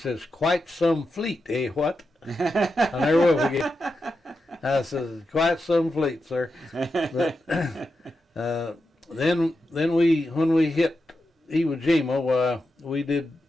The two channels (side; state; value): both; normal; correlation 0.88